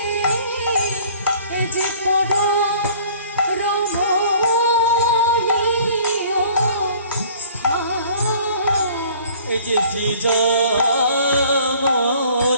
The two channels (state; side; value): inverted; both; correlation -0.52